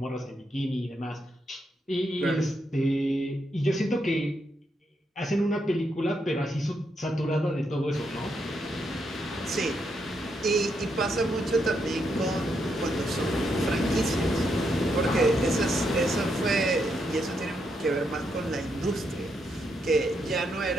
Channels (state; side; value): normal; both; correlation 0.80